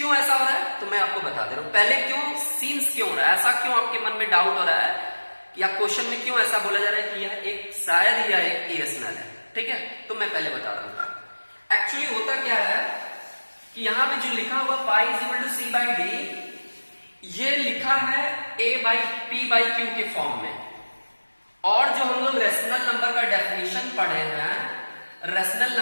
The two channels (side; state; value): both; inverted; correlation -1.00